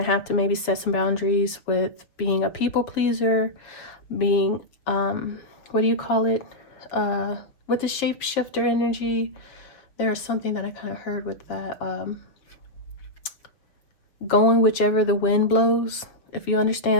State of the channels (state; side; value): late; right; 6.5 ms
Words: have to maybe set some boundaries with being a people pleaser, being, what do you call it? With the shapeshifter energy, there's something that I kind of heard with that. Going whichever the wind blows. If you